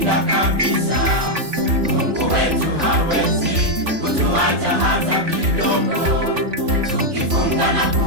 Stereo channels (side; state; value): left; late; 3.5 ms